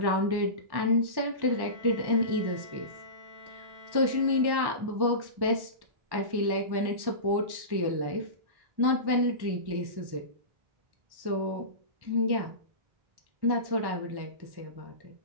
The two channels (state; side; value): late; left; 1.1 ms